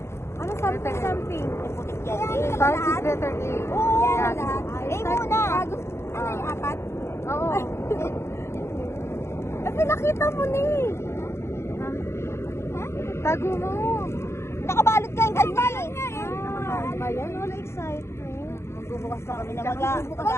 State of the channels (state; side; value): late; right; 0.13 ms